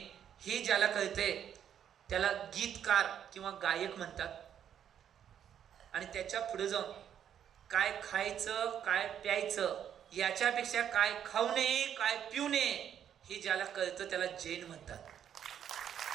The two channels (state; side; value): quieter; left; 9.3 dB